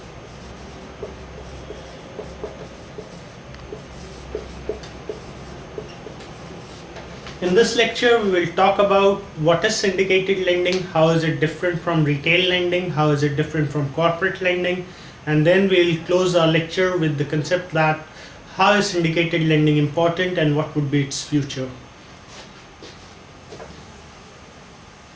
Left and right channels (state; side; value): identical; both; correlation 1.00